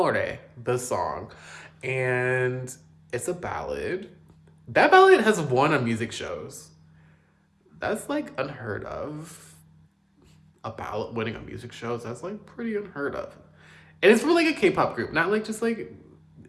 the song. And it's a ballad. That ballad has won on music shows. That's like unheard of. A ballad winning on music shows, that's like pretty unheard of. And it's from like a K-pop group, not like just like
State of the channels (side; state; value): both; identical; correlation 1.00